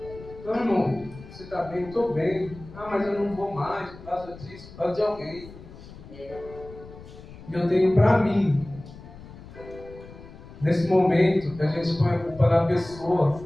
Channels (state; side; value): noise; left; rumble, 17 dB below the sound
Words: Não, irmão, você está bem? Estou bem. Ah, mas eu não vou mais por causa disso, por causa de alguém. E eu tenho para mim, nesse momento que a gente põe a culpa na pessoa,